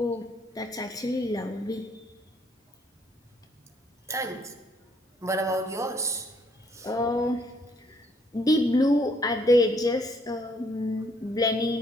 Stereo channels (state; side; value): normal; both; correlation 0.67